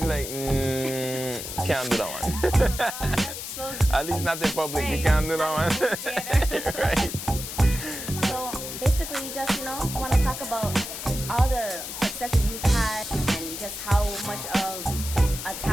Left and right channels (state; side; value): noise; left; hiss, 7 dB below the sound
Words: be like, can't do that one. So At least not in public, you can't do that one. Right. So basically, you just, want to talk about all the successes you've had and just how much of